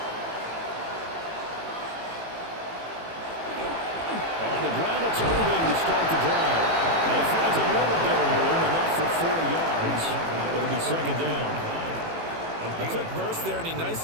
On the ground, it's Irving to start the drive. And he finds a little bit of room, enough for 4 yards. It'll be second down. A quick burst there, and he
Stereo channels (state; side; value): late; left; 18 ms